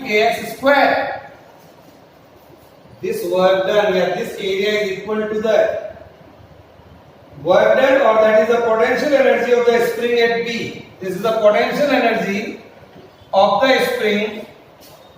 Kx square. This work done here, this area is equal to the work done, or that is the potential energy of the spring at B. This is the potential energy of the spring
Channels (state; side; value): identical; both; correlation 1.00